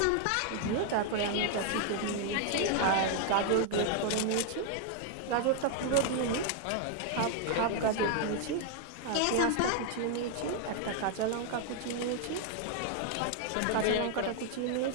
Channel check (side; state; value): both; different; correlation 0.00